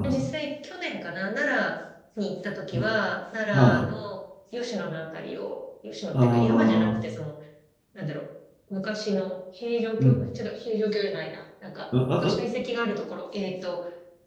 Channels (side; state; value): both; identical; correlation 1.00